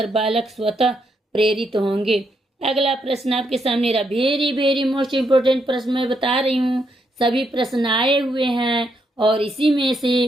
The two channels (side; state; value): both; normal; correlation 0.78